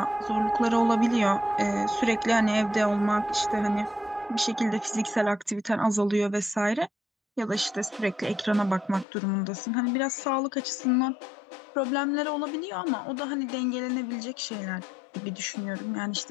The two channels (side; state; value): right; drops out; at 9.1 s